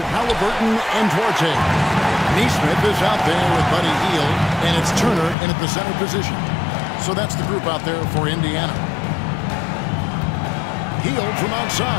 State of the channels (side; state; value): right; drops out; at 5.4 s